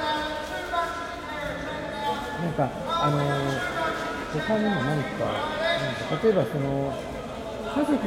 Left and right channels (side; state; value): both; identical; correlation 1.00